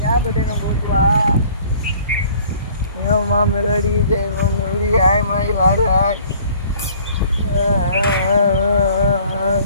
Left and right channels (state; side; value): inverted; both; correlation -0.53